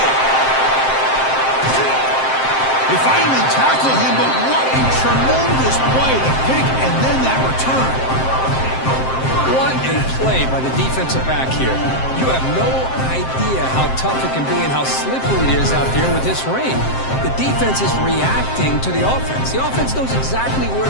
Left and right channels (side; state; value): right; late; 7.6 ms